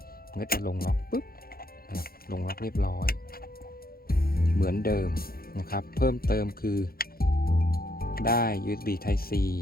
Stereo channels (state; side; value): late; right; 0.43 ms